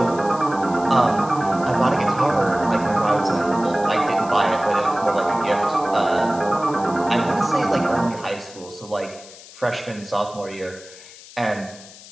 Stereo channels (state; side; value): noise; left; hiss, 19 dB below the sound